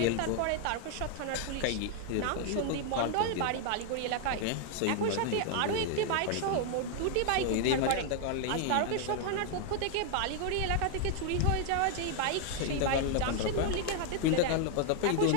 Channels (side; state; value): both; different; correlation 0.00